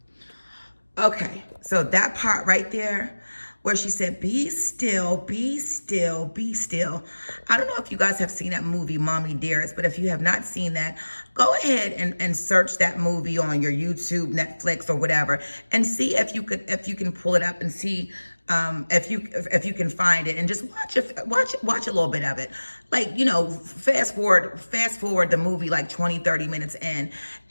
Okay, so that part right there, where she said, be still, be still, be still. I don't know if you guys have seen that movie, Mommy Dearest, but if you have not seen that, go ahead and search that movie on your YouTube, Netflix, or whatever, and see if you can pull it up and see if you can find it, and just watch a little bit of it. Like, fast forward the movie like 20-30 minutes in,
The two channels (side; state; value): both; inverted; correlation -1.00